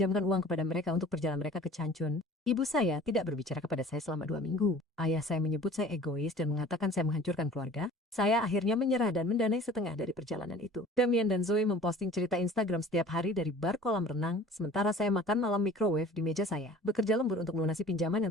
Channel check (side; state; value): both; normal; correlation 0.45